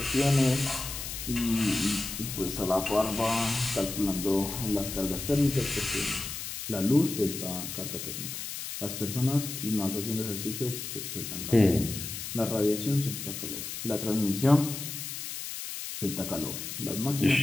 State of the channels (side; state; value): left; noise; hiss, 7 dB below the sound